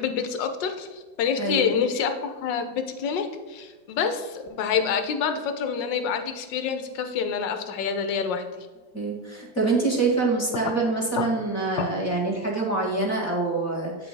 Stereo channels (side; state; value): right; late; 4.1 ms